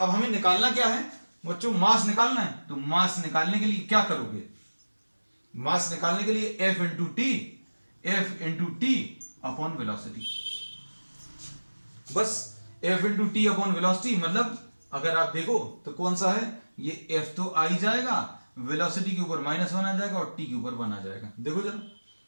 हमें निकालना क्या है बच्चों, मास निकालना है। तो मास निकालने के लिए क्या करोगे, मास निकालने के लिए F into T upon velocity. बस F into T upon velocity, मतलब अगर आप देखो तो कौन सा है, ये एफ तो आ ही जाएगा, वेलोसिटी के ऊपर -1 आ जाएगा और टी के ऊपर 1 आ जाएगा। देखो जरा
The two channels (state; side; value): inverted; both; correlation -1.00